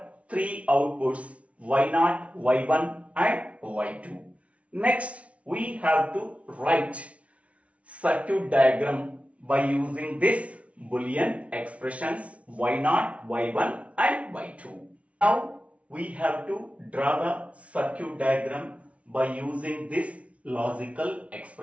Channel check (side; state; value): left; late; 0.064 ms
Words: 3 outputs, Y0, Y1 and Y2. Next, we have to write circuit diagram by using this Boolean expressions Y0, Y1 and Y2. Now, we have to draw the circuit diagram by using these logical